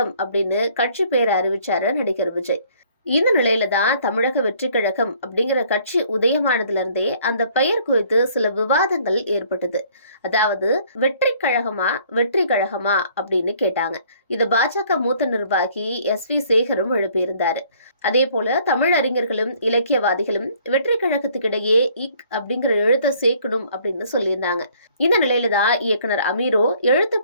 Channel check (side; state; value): both; inverted; correlation -0.60